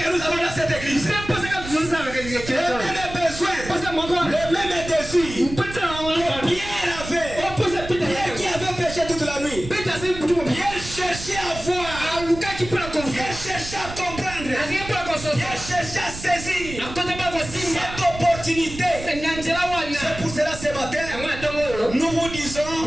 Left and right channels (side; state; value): right; noise; rumble, 11 dB below the sound